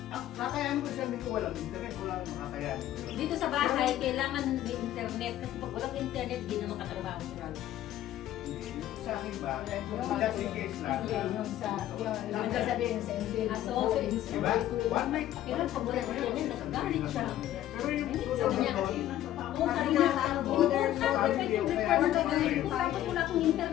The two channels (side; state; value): right; quieter; 12.9 dB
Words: Kakayanin mo isang linggo, walang internet, walang makakayanin mo yun. Dito sa bahay, kailangan may internet. Kasi pag walang internet, di na makatrabaho si Ralph. Hindi. Sa akin ba? Just in case lang. Yung sa, yung sasabihin sa Ansel. Ah, so, Diba? One night. Kailan pag walang internet, nagagalit siya. Pero yung Sabi susunod niya, doon, Oo, sabi niya, importante yung record na ganito. Tapos wala akong